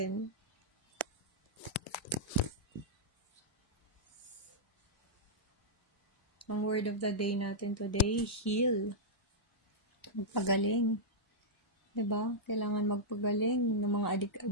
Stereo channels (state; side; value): normal; both; correlation -0.08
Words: Ang word of the day natin today, heal. Magpagaling. Diba? Kailangan magpagaling ng mga